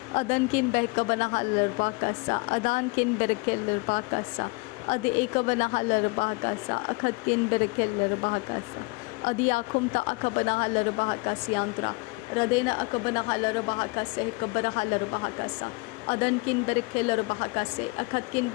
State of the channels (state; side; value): quieter; right; 27.8 dB